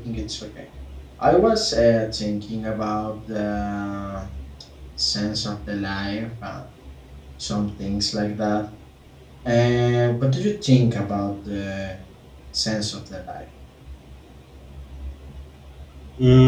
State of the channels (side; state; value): both; identical; correlation 1.00